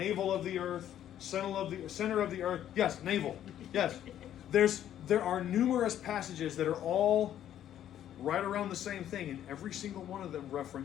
of the earth, center of the earth. Yes, navel. Yes. There are numerous passages that are all right around the same thing, and every single one of them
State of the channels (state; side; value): quieter; right; 11.1 dB